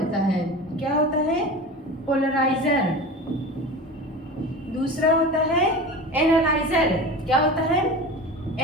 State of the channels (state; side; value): normal; both; correlation 0.32